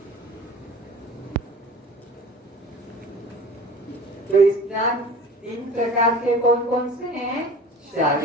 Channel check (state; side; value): normal; both; correlation 0.41